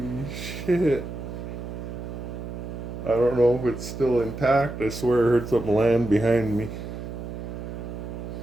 shit. I don't know if it's still intact. I swear I heard something land behind me.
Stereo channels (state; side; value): noise; right; hum, 8 dB below the sound